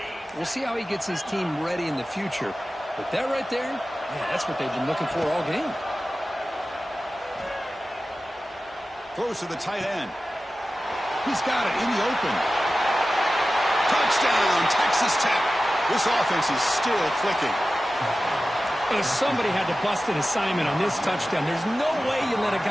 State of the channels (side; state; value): both; normal; correlation 0.95